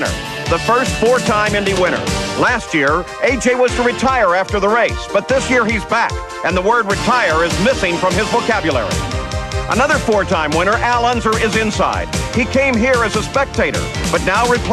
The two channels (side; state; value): both; identical; correlation 1.00